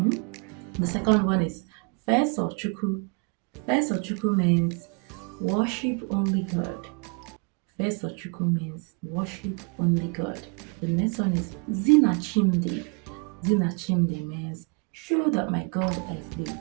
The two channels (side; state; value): left; quieter; 34.9 dB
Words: The second one is Fesochuku. Fesochuku means worship only God. Fesochuku means worship only God. The next one is Zinachimdi. Zinachimdi means show that my God